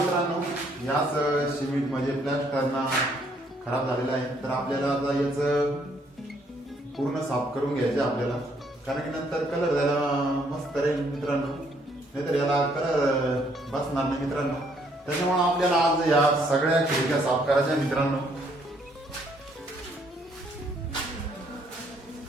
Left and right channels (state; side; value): normal; both; correlation 0.68